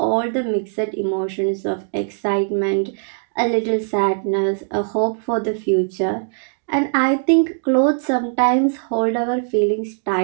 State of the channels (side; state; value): left; silent; digital silence